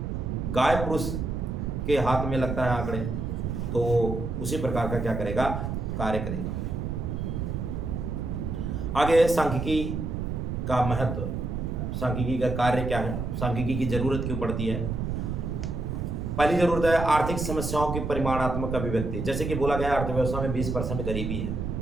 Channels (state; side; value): noise; right; rumble, 3 dB below the sound